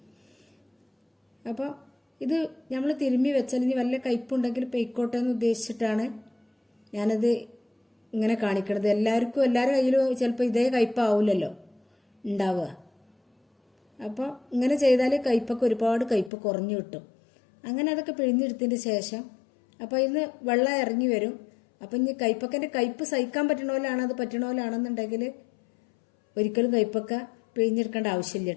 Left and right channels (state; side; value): drops out; right; at 16.3 s